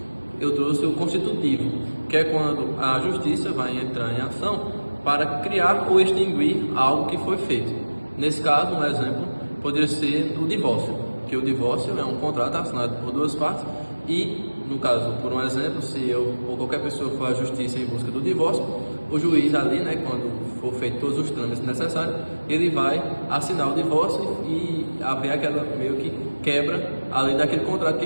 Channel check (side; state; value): both; inverted; correlation -1.00